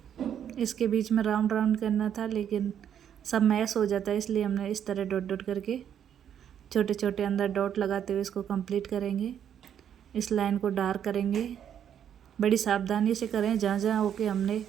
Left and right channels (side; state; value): left; quieter; 9.2 dB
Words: इसके बीच में राउंड राउंड करना था लेकिन सब मैच हो जाता है, इसलिए हमने इस तरह डॉट डॉट करके छोटे छोटे अंदर डॉट लगाते हुए इसको कंप्लीट करेंगे। इस लाइन को डार्क करेंगे। बड़ी सावधानी से करें। जहाँ जहाँ होके हमने